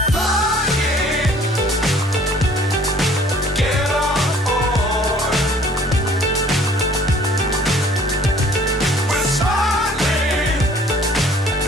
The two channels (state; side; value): normal; both; correlation 0.55